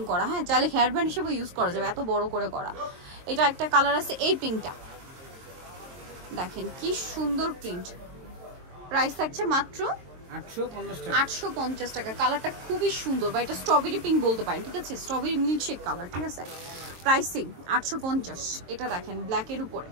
করা, হ্যাঁ, চাইলে হেয়ার ব্যান্ড হিসেবে ইউজ করা যাবে, এত বড় করে করা। এটা একটা কালার আছে, এই পিঙ্কটা দেখেন কি সুন্দর প্রিন্ট। প্রাইস থাকছে মাত্র 850 টাকা। কালারটা খুবই সুন্দর, বা এটা স্ট্রবেরি পিঙ্ক বলতে পারেন, ঠিক আছে? স্ট্রবেরি মিল্কশেক কালার, ঠিক আছে? প্রাইসিং 850। এটা দেখেন ব্ল্যাকের উপরে,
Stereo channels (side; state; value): left; late; 23 ms